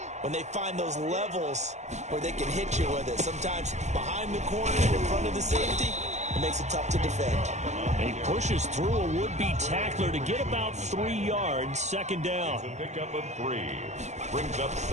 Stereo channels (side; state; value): left; late; 0.33 ms